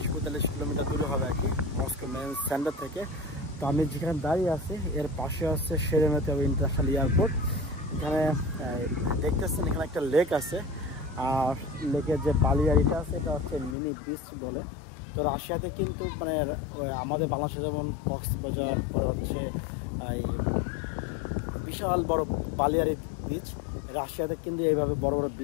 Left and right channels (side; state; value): right; drops out; at 13.8 s